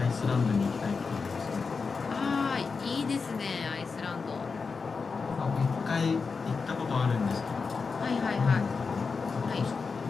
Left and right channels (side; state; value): right; quieter; 4.9 dB